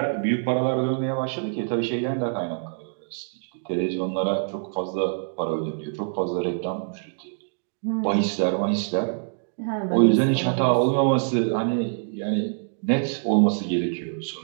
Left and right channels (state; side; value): silent; left; digital silence